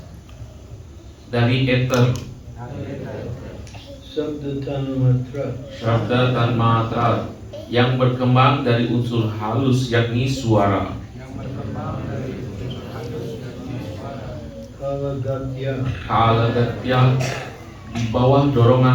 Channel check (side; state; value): both; identical; correlation 1.00